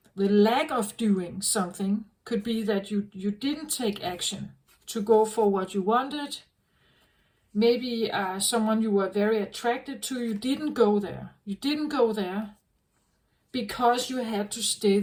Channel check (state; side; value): identical; both; correlation 1.00